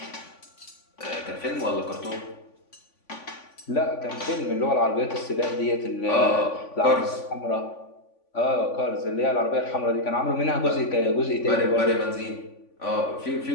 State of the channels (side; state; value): right; late; 3.5 ms